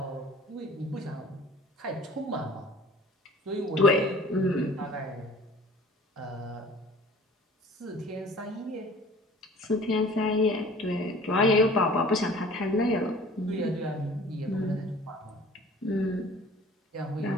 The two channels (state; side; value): normal; both; correlation 0.47